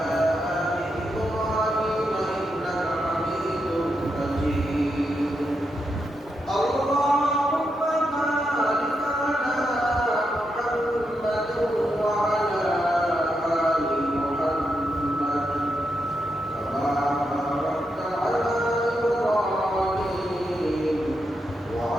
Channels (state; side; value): normal; both; correlation 0.84